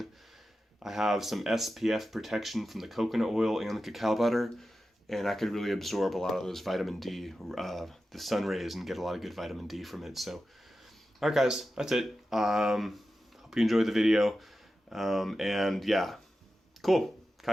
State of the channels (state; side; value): normal; both; correlation 0.92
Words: I have some SPF protection from the coconut oil and the cacao butter, and I could really absorb a lot of those vitamin D, the sun rays, and get a lot of good vitamin D from it. So, all right, guys, that's it. Hope you enjoyed the video, and yeah, cool.